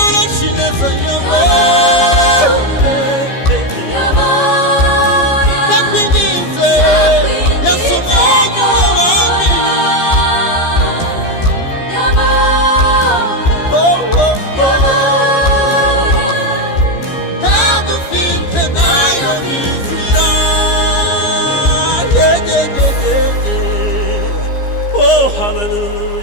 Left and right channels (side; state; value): right; late; 15 ms